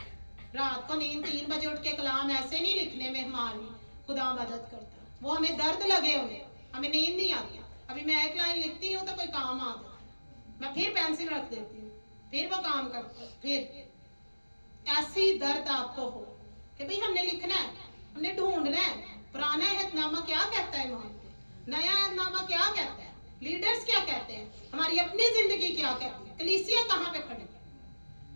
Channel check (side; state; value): both; inverted; correlation -1.00